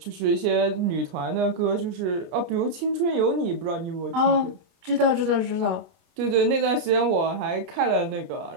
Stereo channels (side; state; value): left; late; 29 ms